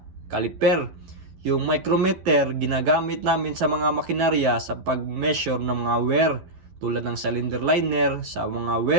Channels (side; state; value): left; late; 11 ms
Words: caliper. Yung micrometer, ginagamit namin sa mga makinarya sa pag-measure ng mga wear, tulad ng cylinder liner, sa mga